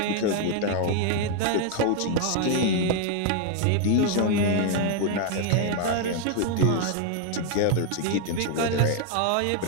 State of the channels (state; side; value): different; both; correlation 0.00